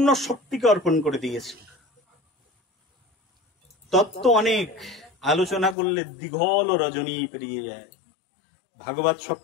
শক্তিকে অর্পণ করে দিয়েছে। তত্ত্ব অনেক আলোচনা করলে দীঘল রজনী পেরিয়ে যায়, ভাগবত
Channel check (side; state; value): right; drops out; at 5.8 s